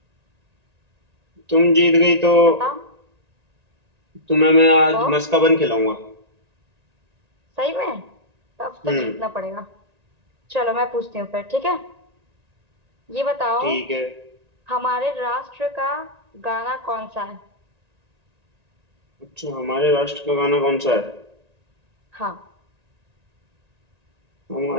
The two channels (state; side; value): late; left; 1.9 ms